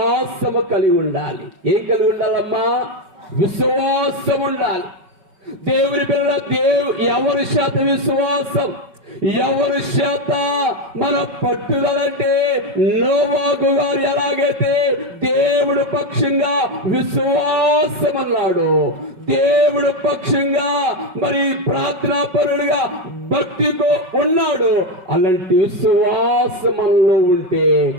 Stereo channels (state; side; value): late; left; 5.3 ms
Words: కలిగి ఉండాలి. ఏం కలిగి ఉండాలమ్మా? విశ్వాసం ఉండాలి. దేవుని పిల్ల ఎవరి శాత విశ్వాసం, ఎవరి శాత మన పట్టుదలంటే నోవాహు గారు ఎలాగైతే దేవుడు పక్షంగా విశ్వాసం అన్నాడు, దేవుడు పక్షంగా మరి ప్రార్థనాపరుడుగా భక్తితో ఉన్నాడు, అలాంటి విశ్వాసం మనలో ఉంటే